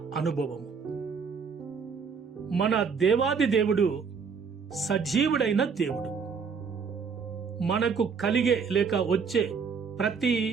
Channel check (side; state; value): left; quieter; 5.8 dB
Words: అనుభవము. మన దేవాది దేవుడు సజీవుడైన దేవుడు. మనకు కలిగే లేక వచ్చే ప్రతి